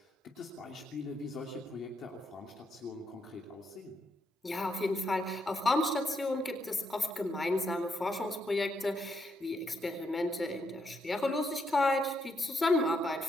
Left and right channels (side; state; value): both; normal; correlation 0.78